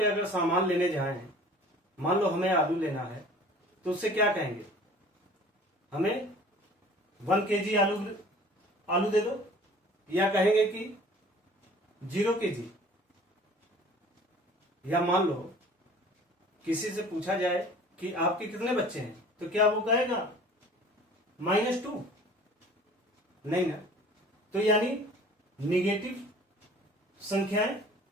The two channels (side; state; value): both; normal; correlation 0.47